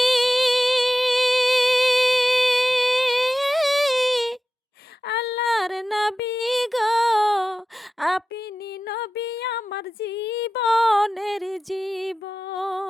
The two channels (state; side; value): normal; both; correlation 0.94